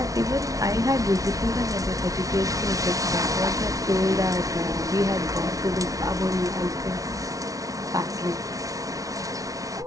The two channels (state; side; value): late; left; 0.17 ms